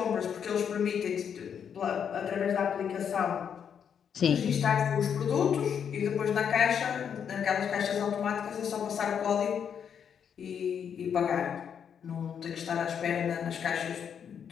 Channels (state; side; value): quieter; right; 7.8 dB